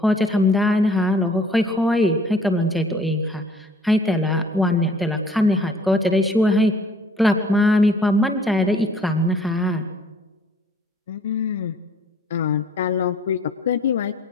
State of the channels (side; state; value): both; normal; correlation 0.56